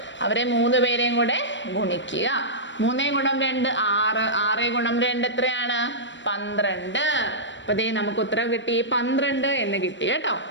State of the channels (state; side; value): late; right; 0.54 ms